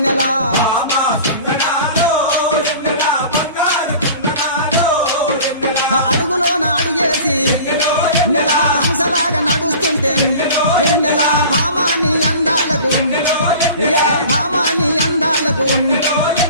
అడుగులోన అడుగేసి నెలా హంసలాగా నడుస్తుంటే వెన్నెలా భామాని అందాలకు ఏ భామాని అందాలకు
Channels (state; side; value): inverted; both; correlation -0.41